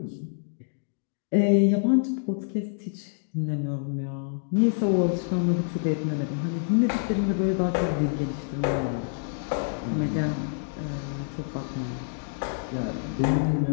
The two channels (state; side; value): silent; right; digital silence